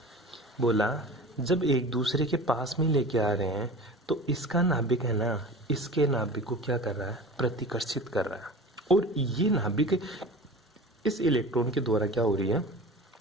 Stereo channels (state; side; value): normal; both; correlation 0.36